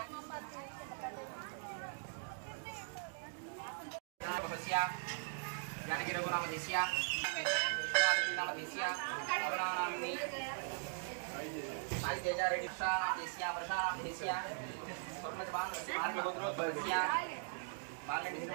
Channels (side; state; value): left; silent; digital silence